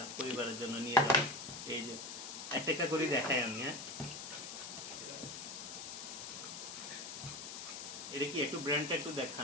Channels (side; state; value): left; noise; hiss, 8 dB below the sound